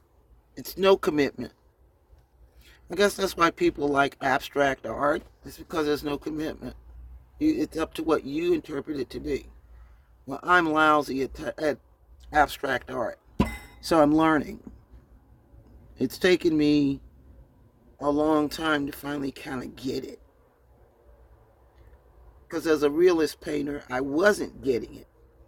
It's no commitment. I guess that's why people like abstract art. It's because there's no commitment. It's up to what you interpret it to be. Well, I'm lousy at abstract art. So I'm learning. It's taken me a long time to finally kind of get it. Because as a realist painter, I wasn't getting it.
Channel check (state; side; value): identical; both; correlation 1.00